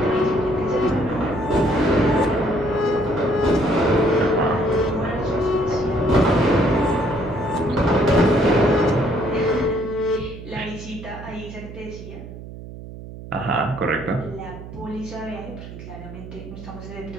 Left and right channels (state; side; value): noise; right; hum, 13 dB below the sound